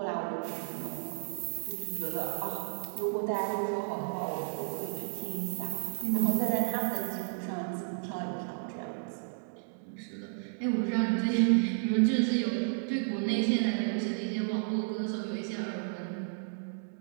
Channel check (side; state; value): left; silent; digital silence